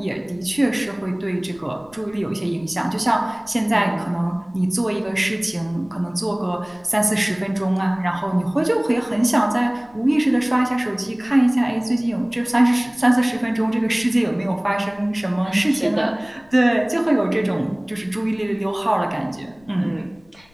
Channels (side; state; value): left; noise; rumble, 29 dB below the sound